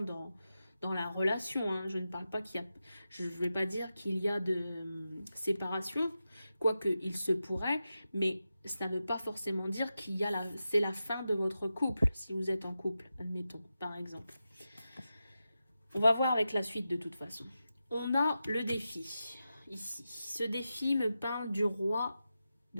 dans la relation. Hein. Je ne parle pas qu'il y a... Je ne vais pas dire qu'il y a de séparation, quoique il se pourrait, mais ça ne veut pas forcément dire qu'il y a c'est la fin de votre couple, si vous êtes en couple, admettons, par exemple. On va voir avec la suite de toute façon. On a le défi, ici. Ce défi me parle du roi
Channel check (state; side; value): inverted; both; correlation -0.91